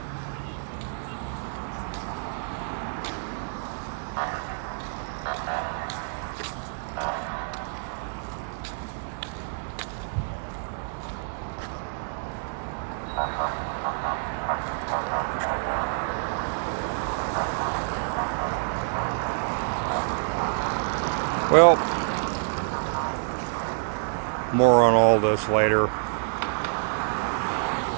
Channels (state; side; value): silent; left; 60 dB below the other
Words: Well, more on all this later.